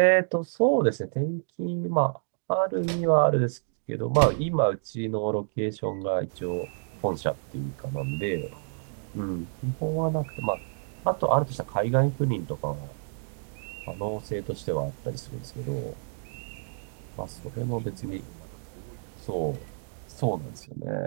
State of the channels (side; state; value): left; silent; digital silence